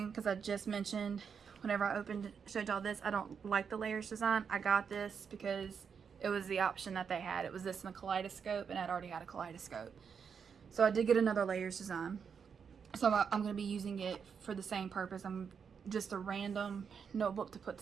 because I just mentioned whenever I showed y'all this, I don't like the layers design. I got this because it was the option that they had. It was this in a kaleidoscope, and I'd already had a kaleidoscope. So I did get another layers design. So I'm going to be using it for the same purpose. I'm just a random notebook to put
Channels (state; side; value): quieter; left; 6.6 dB